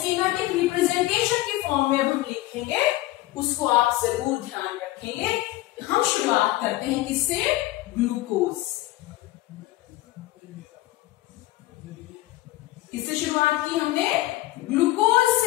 रिप्रेजेंटेशन की फॉर्म में अब हम लिखेंगे, उसको आप जरूर ध्यान रखेंगे। हम शुरुआत करते हैं किससे? ग्लूकोज। किससे शुरुआत की हमने? ग्लूकोज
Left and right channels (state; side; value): quieter; right; 17.6 dB